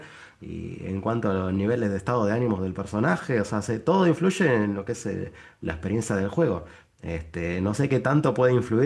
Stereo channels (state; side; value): identical; both; correlation 1.00